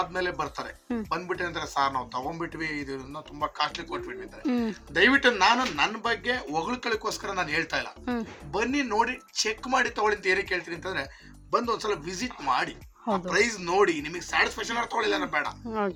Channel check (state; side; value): identical; both; correlation 1.00